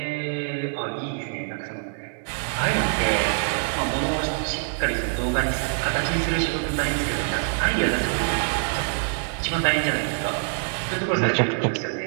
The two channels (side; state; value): left; silent; digital silence